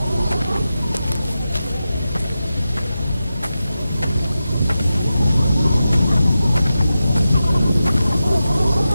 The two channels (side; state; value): both; inverted; correlation -0.92